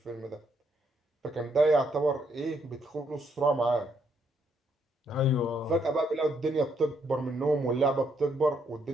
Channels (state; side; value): normal; both; correlation 0.73